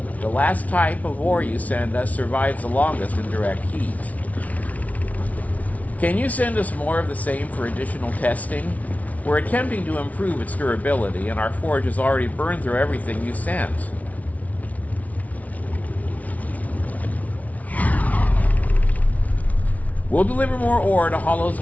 The last type of ore you send us survives the longest in direct heat. Can you send us more of the same for additional testing? We're attempting to improve its durability, and our forge has already burned through everything you sent. We'll deliver more ore to Hollow's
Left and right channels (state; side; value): late; right; 0.070 ms